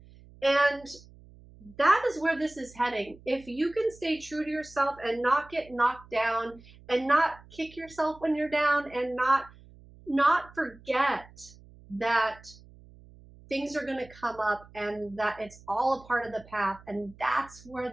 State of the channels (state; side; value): noise; right; hum, 23 dB below the sound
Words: And that is where this is heading. If you can stay true to yourself and not get knocked down, and not kick yourself when you're down, and not forget that things are going to come up, and that it's all a part of the path, and that's where